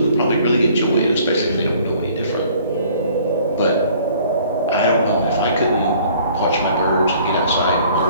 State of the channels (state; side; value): inverted; both; correlation -0.56